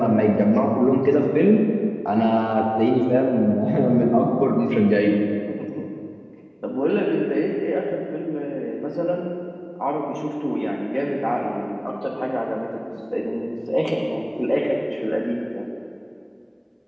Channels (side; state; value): both; identical; correlation 1.00